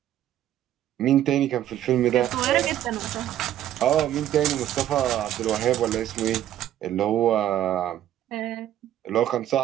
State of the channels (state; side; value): quieter; left; 12.1 dB